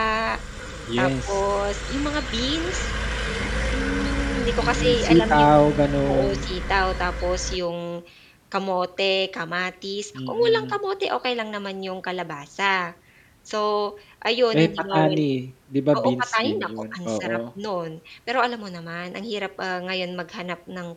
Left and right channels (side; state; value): both; identical; correlation 1.00